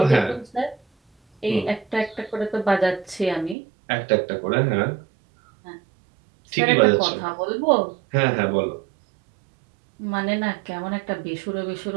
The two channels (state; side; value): drops out; left; at 3.6 s